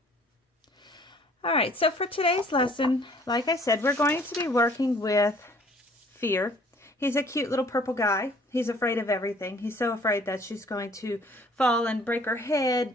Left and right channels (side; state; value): both; normal; correlation 0.56